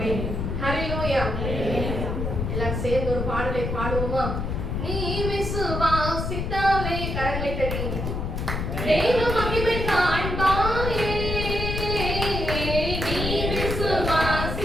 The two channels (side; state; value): left; noise; rumble, 2 dB below the sound